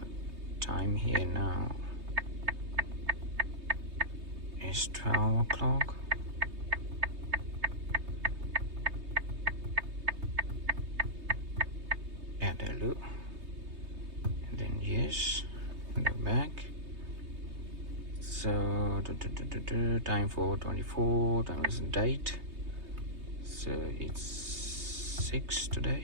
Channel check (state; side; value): late; left; 3.2 ms